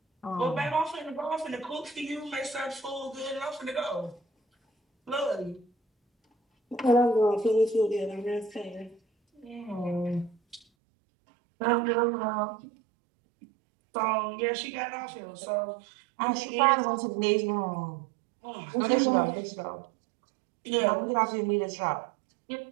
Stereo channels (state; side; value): drops out; left; at 10.6 s